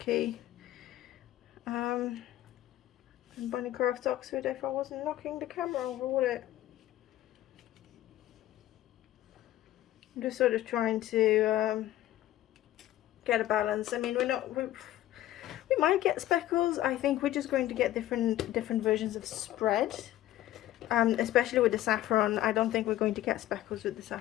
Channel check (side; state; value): right; quieter; 14.1 dB